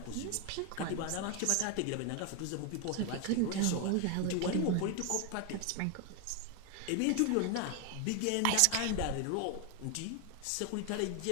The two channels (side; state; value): both; different; correlation 0.01